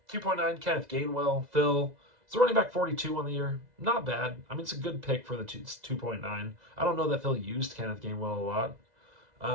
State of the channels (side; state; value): left; late; 2.0 ms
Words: Kenneth Gainwell. Phil, it's a running back 42 on the year. Not bad. I mean, it's a good pick for the 2.9. I don't know that Phil used Kenneth Gainwell a lot.